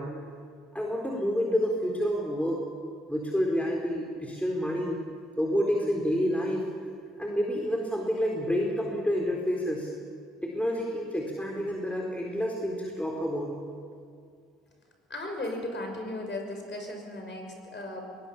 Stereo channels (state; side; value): normal; both; correlation 0.81